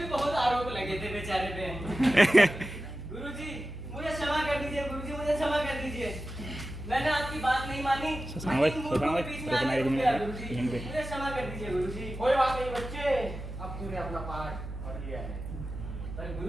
बहुत आरोप लगे थे बेचारे पे। गुरुजी मुझे क्षमा कर दीजिए, गुरुजी मुझे क्षमा कर दीजिए, मैंने आपकी बात नहीं मानी, मूर्खों के बीच में आके रुक गया गुरुजी, मुझे क्षमा कर दीजिए गुरुजी। कोई बात नहीं बच्चे, अब तूने अपना पाठ पढ़ लिया है। पर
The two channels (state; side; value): noise; right; hum, 9 dB below the sound